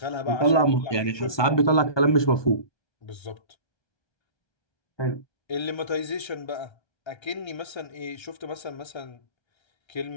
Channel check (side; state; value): right; late; 1.2 ms